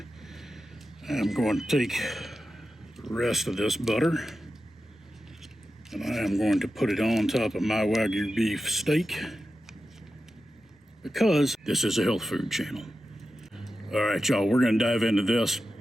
I'm going to take the rest of this butter and I am going to put it on top of my Wagyu beef steak because this is a health food channel. All right, y'all, we're going to dive into this.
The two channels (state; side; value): normal; both; correlation 0.91